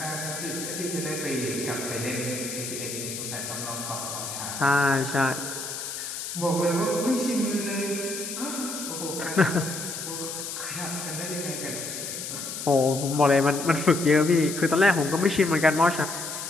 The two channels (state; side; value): noise; left; hiss, 7 dB below the sound